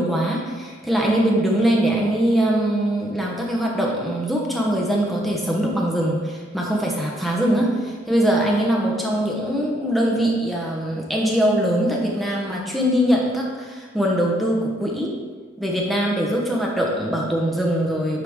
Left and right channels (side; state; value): both; normal; correlation 0.72